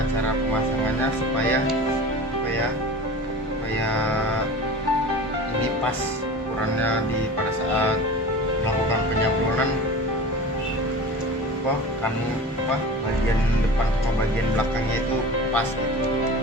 cara pemasangannya supaya ini pas ukurannya pada saat melakukan penyablonan, bagian depan sama bagian belakangnya itu pas gitu,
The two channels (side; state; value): both; normal; correlation 0.35